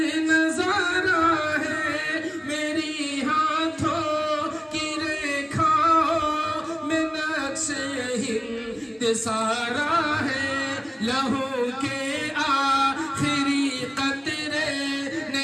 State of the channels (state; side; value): identical; both; correlation 1.00